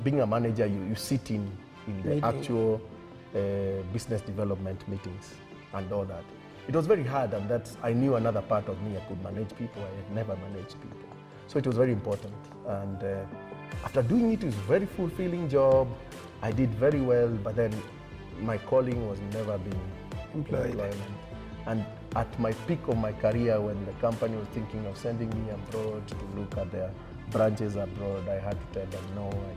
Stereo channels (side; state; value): both; identical; correlation 1.00